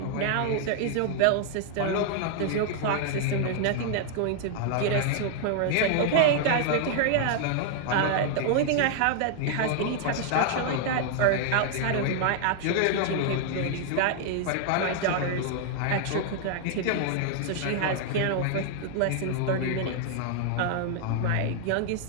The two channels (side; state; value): both; different; correlation 0.00